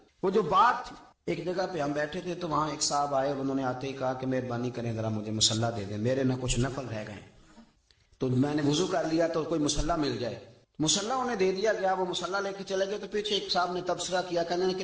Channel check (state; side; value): identical; both; correlation 1.00